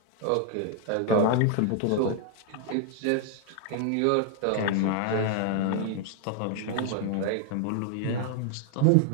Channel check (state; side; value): different; both; correlation 0.00